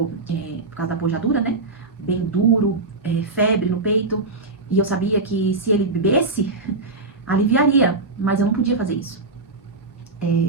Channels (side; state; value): left; quieter; 3.4 dB